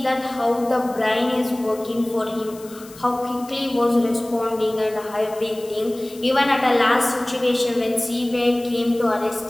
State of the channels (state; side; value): noise; left; hiss, 20 dB below the sound